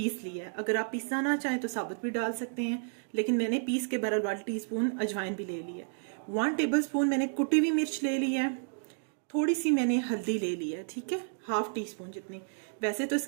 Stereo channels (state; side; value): silent; left; digital silence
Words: लिया है। अगर आप पीसना ना चाहें तो साबुत भी डाल सकते हैं, लेकिन मैंने पीस के बराबर 1 टीस्पून अजवाइन भी ले ली है। 1 टेबल स्पून मैंने कुटी हुई मिर्च ले ली है। थोड़ी सी मैंने हल्दी ले ली है, ठीक है, 1/2 टीस्पून जितनी। वैसे तो